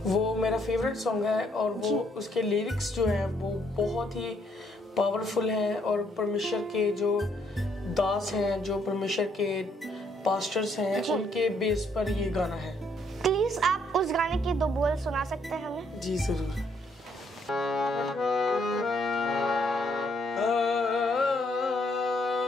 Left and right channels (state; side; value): normal; both; correlation 0.70